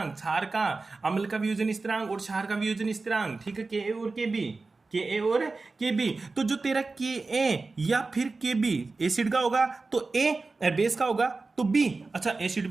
क्षार का अम्ल का वियोजन स्थिरांक और क्षार का वियोजन स्थिरांक। ठीक है, के ए और के बी, के ए और के बी। तो जो तेरा के ए या फिर के बी एसिड का होगा तो ए, बेस का होगा तो बी। अच्छा, एसिड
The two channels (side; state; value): left; quieter; 3.8 dB